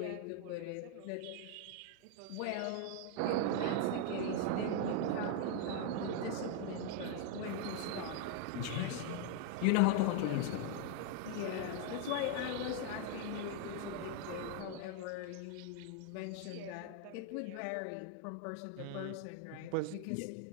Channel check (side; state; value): both; different; correlation 0.00